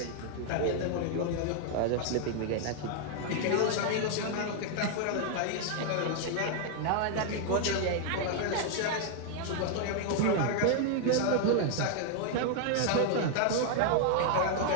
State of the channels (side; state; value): both; different; correlation 0.00